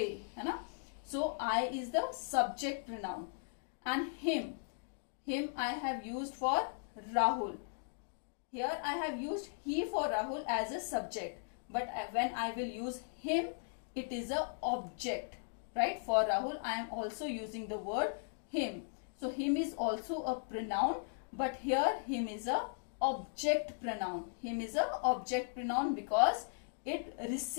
है ना? So I is the subject pronoun. And him I have used for Rahul. Here I have used he for Rahul as a subject. But when I will use him, it is a object. Right? For Rahul, I am also using the word him. So him is also a pronoun, but here him is a object pronoun. Him is a object pronoun because it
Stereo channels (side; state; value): right; silent; digital silence